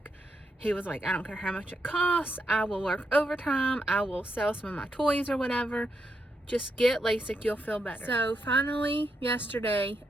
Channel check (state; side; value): normal; both; correlation 0.82